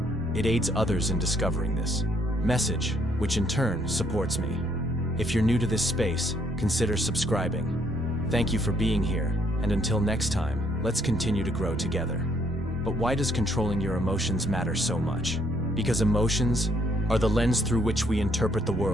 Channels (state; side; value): normal; both; correlation 0.69